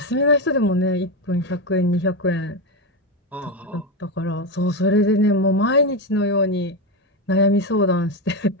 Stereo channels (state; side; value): normal; both; correlation 0.12